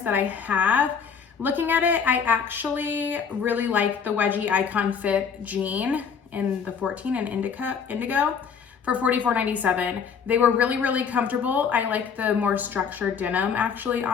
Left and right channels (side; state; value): right; quieter; 6.6 dB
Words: that I have, looking at it, I actually really like the wedgie icon fit jean in the 14 and indigo. for $44.97. They were really, really comfortable. I like the more structured denim actually